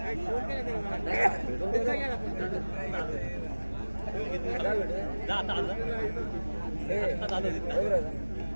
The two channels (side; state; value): both; inverted; correlation -1.00